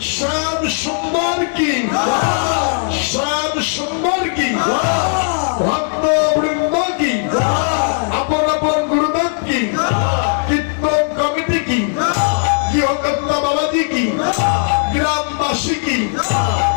শ্যাম সুন্দর কি, শ্যাম সুন্দর কি, ভক্ত বৃন্দ কি, আপন আপন গুরুদেব কি, কীর্তন কমিটি কি, গৃহকর্তা বাবাজি কি, গ্রামবাসী কি,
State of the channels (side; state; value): right; silent; 61 dB below the other